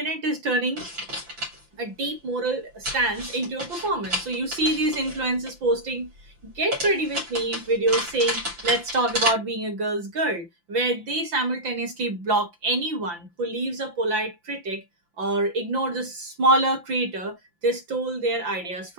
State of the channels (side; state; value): left; late; 5.8 ms